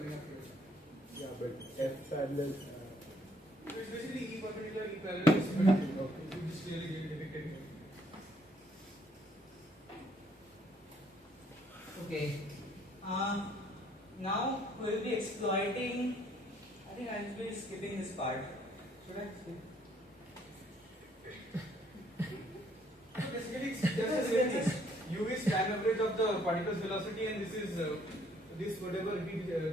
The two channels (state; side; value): normal; both; correlation 0.65